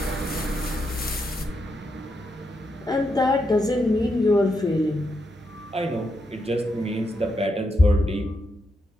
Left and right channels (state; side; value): normal; both; correlation 0.82